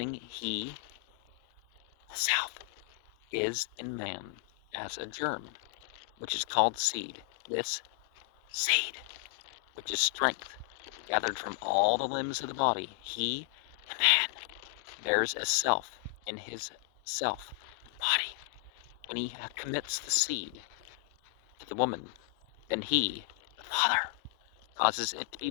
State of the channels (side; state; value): right; quieter; 26.9 dB